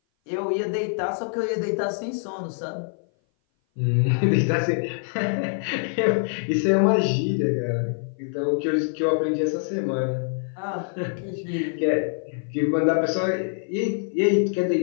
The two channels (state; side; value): silent; right; 57 dB below the other